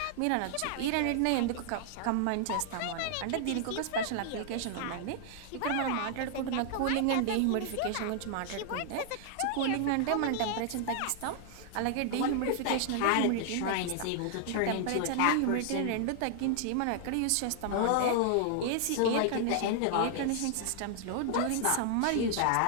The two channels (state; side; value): different; both; correlation -0.01